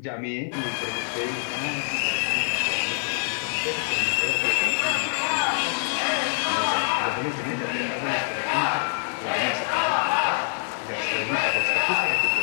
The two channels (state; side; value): silent; right; digital silence